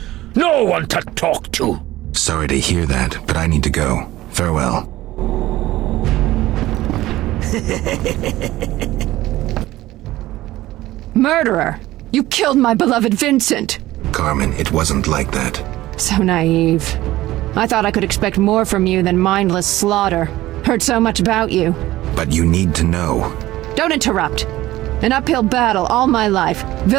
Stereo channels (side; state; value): left; quieter; 16.4 dB